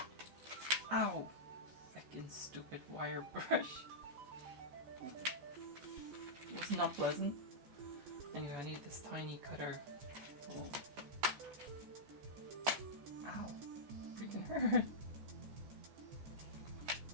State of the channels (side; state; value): left; late; 14 ms